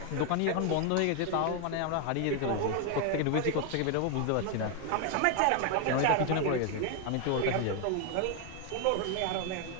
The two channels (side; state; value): both; different; correlation 0.01